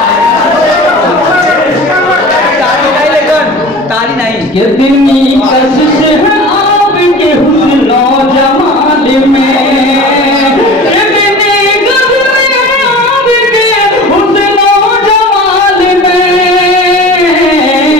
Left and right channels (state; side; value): normal; both; correlation 0.38